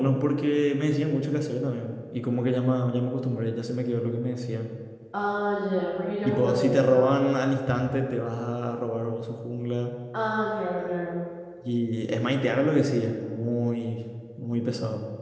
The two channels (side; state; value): both; identical; correlation 1.00